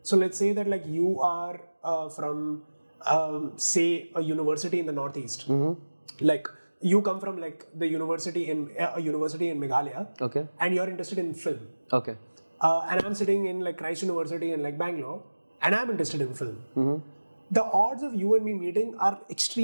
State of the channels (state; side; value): inverted; both; correlation -1.00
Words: So let's say that like you are from say a university in the Northeast. Like you come from like the university in a university in Meghalaya. Okay. And you're interested in film. Okay. And I'm sitting in like Christ University in like Bangalore, and I'm interested in film. The odds of you and me meeting are